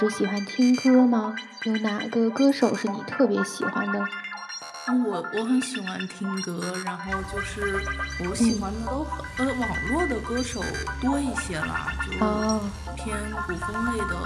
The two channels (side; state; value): both; identical; correlation 1.00